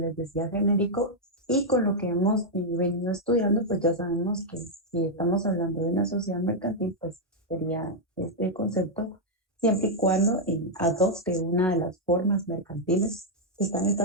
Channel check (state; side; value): normal; both; correlation -0.03